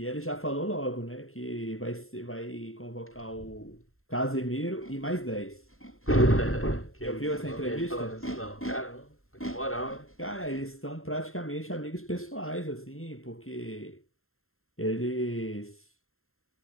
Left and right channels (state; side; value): late; right; 0.61 ms